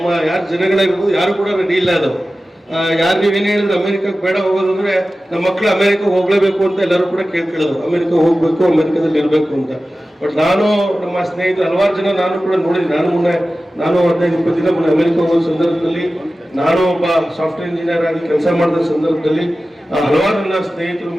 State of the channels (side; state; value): both; normal; correlation 0.95